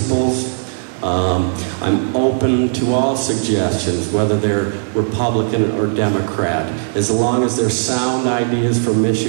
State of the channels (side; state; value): left; silent; digital silence